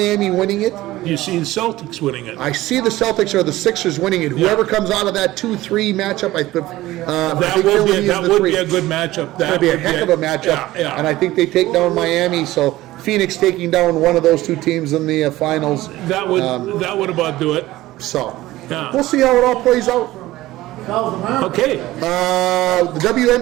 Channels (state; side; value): quieter; left; 16.8 dB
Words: winning it. You see the Celtics winning it. I see the Celtics or the Sixers winning it. Whoever comes out of that 2-3 matchup, that would be a good matchup. That would be a heck of a matchup. And I think they take down Miami. So Phoenix taking down one of those two teams in the finals. That would about do it. So we'll see how it all plays out. Okay. The